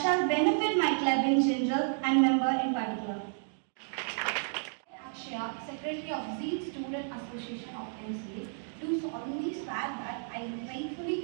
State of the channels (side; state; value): left; silent; digital silence